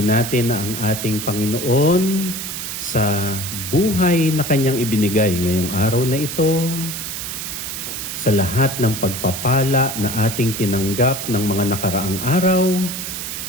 natin ang ating Panginoon sa buhay na Kanyang ibinigay ngayong araw na ito, sa lahat ng pagpapala na ating tinanggap ng mga nakaraang araw,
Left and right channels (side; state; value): right; noise; hiss, 6 dB below the sound